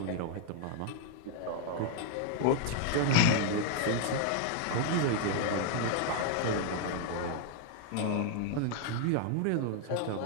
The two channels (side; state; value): both; different; correlation 0.00